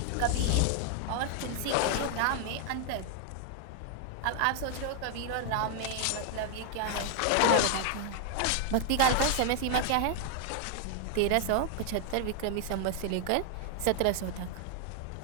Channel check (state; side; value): different; both; correlation 0.00